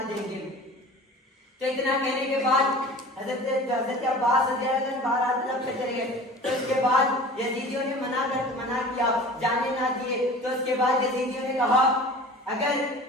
دیں گے. تو اتنا کہنے کے بعد حضرت عباس رضی اللہ عنہ باہر طرف سے چلے گئے. تو اس کے بعد یزیدیوں نے منع کیا, جانے نہ دیے. تو اس کے بعد یزیدیوں نے کہا اگر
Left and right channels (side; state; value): both; normal; correlation 0.40